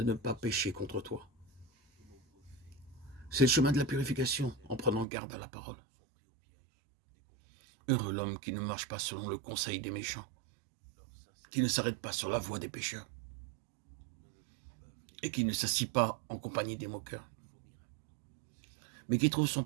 ne pas pécher contre toi. C'est le chemin de la purification, en prenant garde à la parole. Heureux l'homme qui ne marche pas selon le conseil des méchants, qui ne s'arrête pas sur la voie des pécheurs, et qui ne s'assit pas en compagnie des moqueurs, mais qui trouve son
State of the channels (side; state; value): left; drops out; at 5.1 s